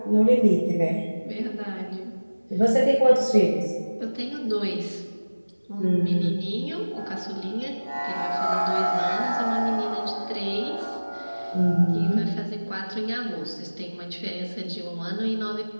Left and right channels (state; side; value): inverted; both; correlation -1.00